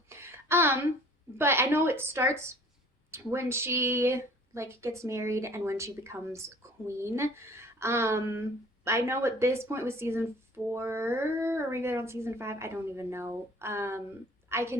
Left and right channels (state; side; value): normal; both; correlation 0.51